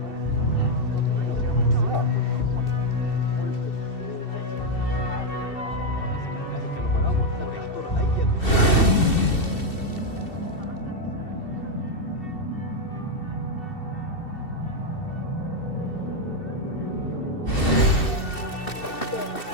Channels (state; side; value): late; right; 2.7 ms